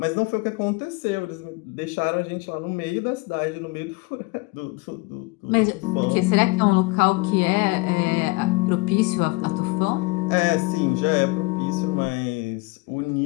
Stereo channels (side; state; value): right; quieter; 25.0 dB